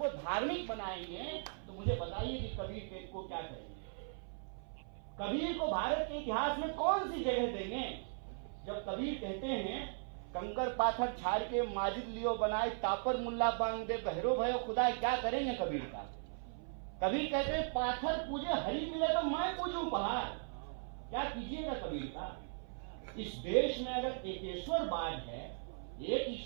धार्मिक बनाएंगे तो मुझे बताइए कि कबीर को क्या करेंगे? कबीर को भारत के इतिहास में कौन सी जगह देंगे? जब कबीर कहते हैं कंकर पाथर छाड़ के माजिद लियो बनाए, तापर मुल्ला बांग दे, बहरो भयो खुदा, क्या करेंगे कबीर का? कबीर कहते हैं पाथर पूजे हरी मिले तो मैं पूजूं पहाड़, क्या कीजिएगा कबीर का? इस देश में अगर एकेश्वरवाद है, एक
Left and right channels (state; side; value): silent; left; 52 dB below the other